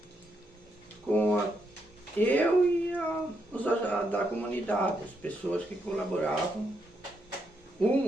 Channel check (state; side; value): normal; both; correlation 0.79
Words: com eu e os da comunidade, as pessoas que colaboravam,